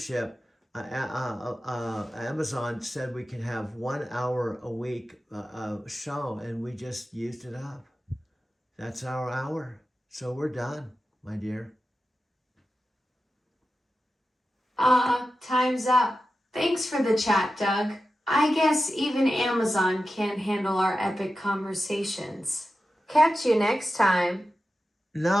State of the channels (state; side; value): normal; both; correlation 0.92